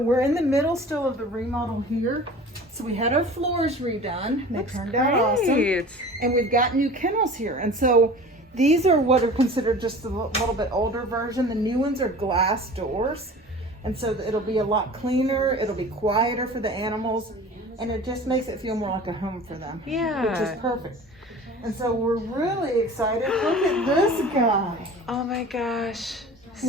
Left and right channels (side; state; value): both; normal; correlation 0.41